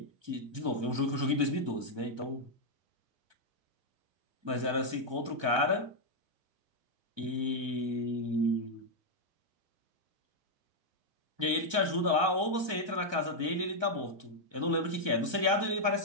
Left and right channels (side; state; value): left; late; 1.2 ms